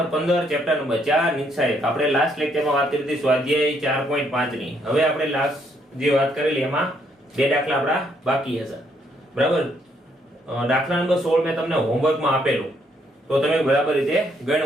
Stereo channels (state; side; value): normal; both; correlation 0.71